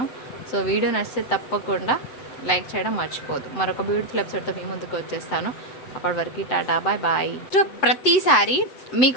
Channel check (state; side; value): late; right; 7.8 ms